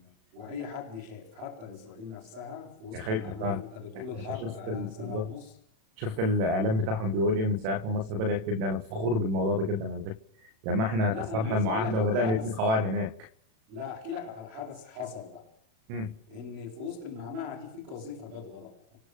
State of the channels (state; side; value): late; left; 36 ms